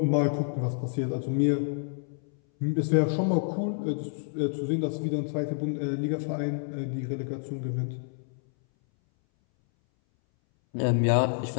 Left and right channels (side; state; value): right; silent; 59 dB below the other